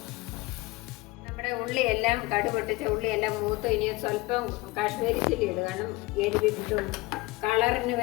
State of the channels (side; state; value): right; quieter; 22.0 dB